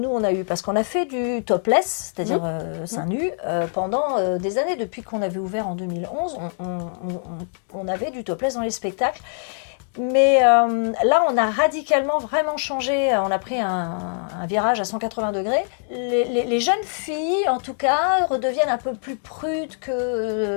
on a eue. Parce qu'on a fait du topless, c'est-à-dire seins nus, pendant des années. Depuis qu'on avait ouvert en 2011, on avait du topless dans les spectacles. Mais là, on a radicalement vraiment changé. On a pris un virage à 180 degrés. Les jeunes filles, en tout cas, redeviennent un peu plus prudes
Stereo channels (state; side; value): silent; right; 63 dB below the other